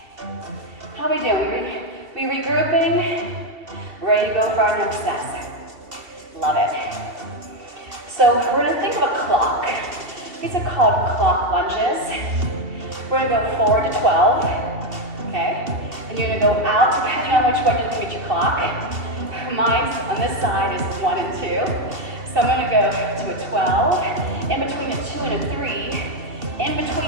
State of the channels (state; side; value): late; left; 2.7 ms